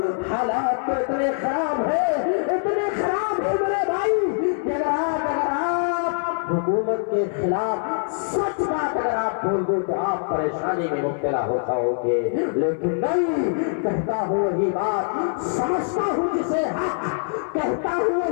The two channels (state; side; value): silent; right; 63 dB below the other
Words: حالات تو اتنے خراب ہے میرے بھائی کہ اگر آپ حکومت کے خلاف سچ بات اگر آپ بول دو تو آپ پریشانی میں مبتلا ہو جاؤ گے، لیکن نہیں، کہتا ہوں وہی بات سمجھتا ہوں جسے حق، کہتا ہوں